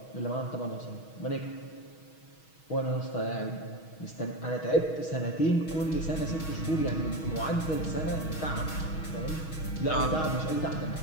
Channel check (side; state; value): right; late; 6.3 ms